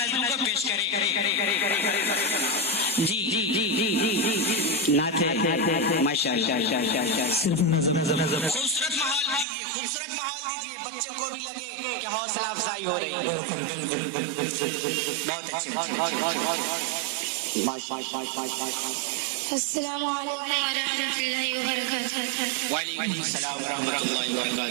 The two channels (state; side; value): drops out; left; at 9.5 s